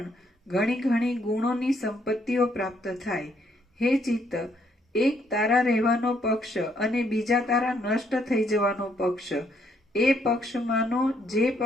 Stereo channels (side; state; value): both; normal; correlation 0.70